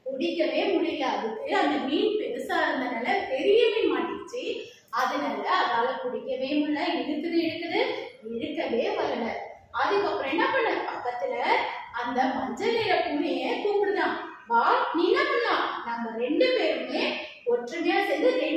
பிடிக்கவே முடியல. அதுக்கு அந்த மீன் பெருசா இருந்தனால பெரிய மீன் மாட்டிச்சு. அதனால அதால பிடிக்கவே முடியல. இழுக்குது இழுக்கவே வரல. அதுக்கப்புறம் என்ன பண்ண, பக்கத்துல அந்த மஞ்சள் நிற பூனைய கூப்பிடுதான், வா நீ என்ன பண்ணலாம், நம்ம 2 பேருமே ஒற்றுமையா சேர்ந்து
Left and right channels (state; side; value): identical; both; correlation 1.00